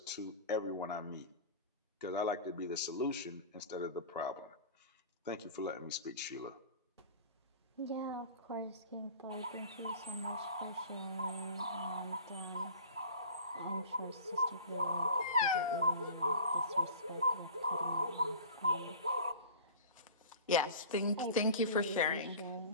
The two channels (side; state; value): both; inverted; correlation -0.38